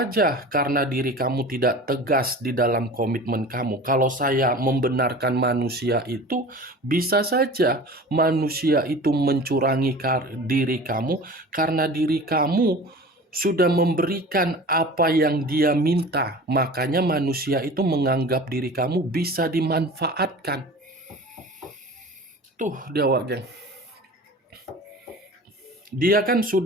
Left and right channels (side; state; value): both; normal; correlation 0.38